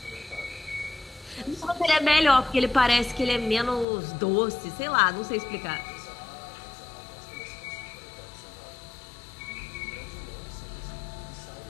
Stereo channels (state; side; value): drops out; right; at 3.9 s